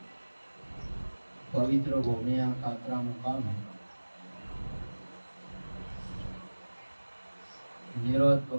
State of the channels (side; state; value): both; inverted; correlation -1.00